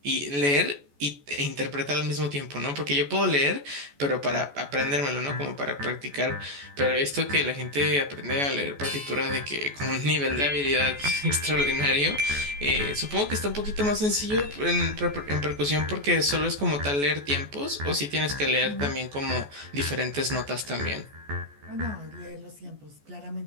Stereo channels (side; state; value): left; late; 14 ms